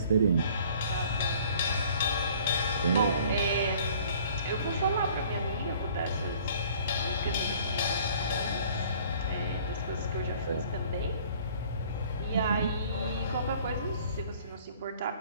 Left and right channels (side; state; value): both; inverted; correlation -0.53